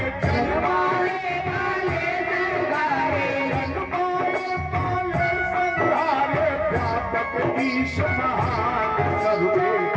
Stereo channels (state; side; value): identical; both; correlation 1.00